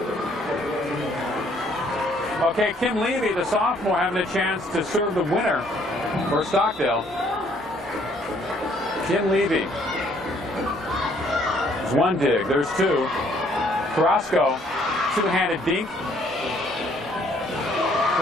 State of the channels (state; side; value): normal; both; correlation 0.64